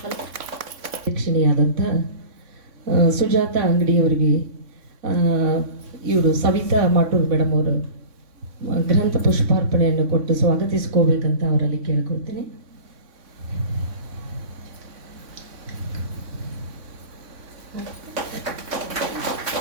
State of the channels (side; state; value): left; late; 3.6 ms